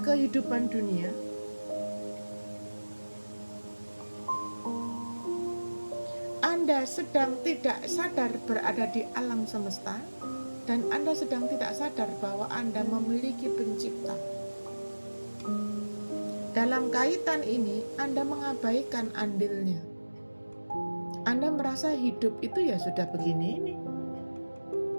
kehidupan dunia. Anda sedang tidak sadar berada di alam semesta, dan Anda sedang tidak sadar bahwa Anda memiliki pencipta. Dalam kaitan ini, Anda mengabaikan andilnya. Anda merasa hidup itu ya sudah begini ini.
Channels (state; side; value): inverted; both; correlation -1.00